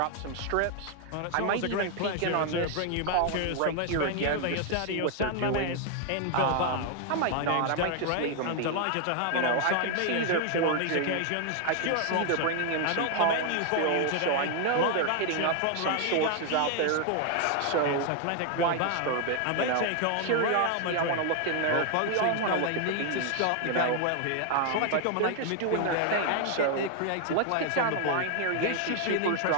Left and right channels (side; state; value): both; different; correlation 0.00